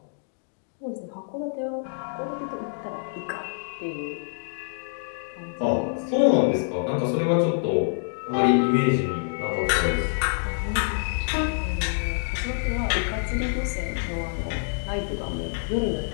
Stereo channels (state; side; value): silent; right; digital silence